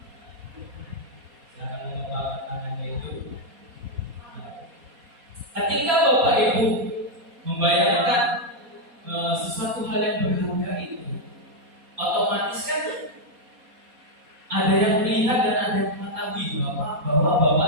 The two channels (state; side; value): late; left; 4.2 ms